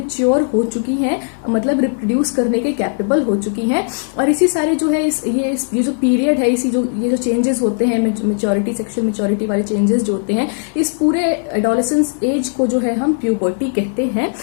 हो चुकी है, मतलब रिप्रोड्यूस करने के कैपेबल हो चुकी हैं। और इसी सारे जो है ये जो पीरियड है, इसी जो ये जो चेंजेस होते हैं, मेच्योरिटी, सेक्सुअल मेच्योरिटी वाले चेंजेस जो होते हैं, इस पूरे एडोलेसेंस एज को जो है हम प्यूबर्टी कहते हैं।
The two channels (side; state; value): right; silent; 63 dB below the other